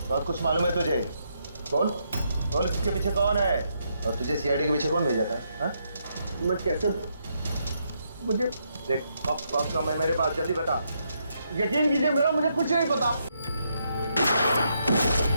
बहुत कुछ मालूम है तुझे? बोल बोल, इसके पीछे कौन है और तुझे सीआईडी के पीछे कौन भेजा था? हाँ? मैं कैसे मुझे देख वक्त समय मेरे पास, जल्दी बता। यकीन कीजिए मेरा मुझे कुछ नहीं पता।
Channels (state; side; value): inverted; both; correlation -0.78